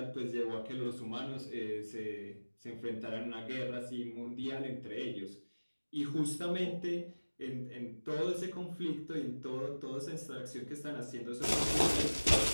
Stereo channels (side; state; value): both; inverted; correlation -1.00